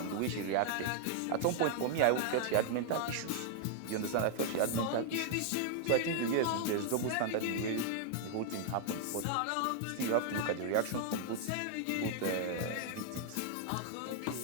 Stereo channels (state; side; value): different; both; correlation 0.00